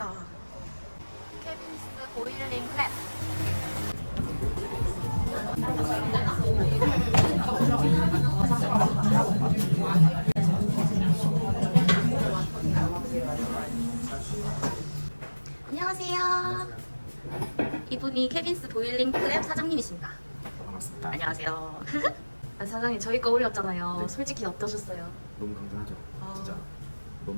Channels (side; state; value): both; inverted; correlation -1.00